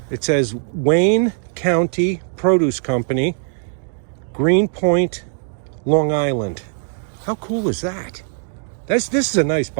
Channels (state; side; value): silent; left; digital silence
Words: It says Wayne County Produce Company, Greenpoint, Long Island. How cool is that? This is a nice